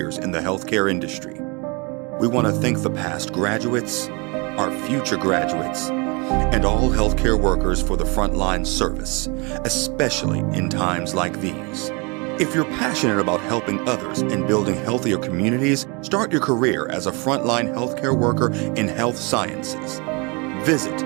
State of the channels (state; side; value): quieter; left; 30.1 dB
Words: in the healthcare industry. We want to thank the past graduates, our future graduates, and all healthcare workers for the frontline service, especially in times like these. If you're passionate about helping others and building healthier communities, start your career as a frontline healthcare worker in health sciences. Visit